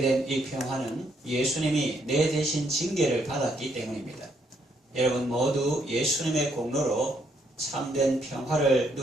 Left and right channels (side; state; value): both; normal; correlation 0.72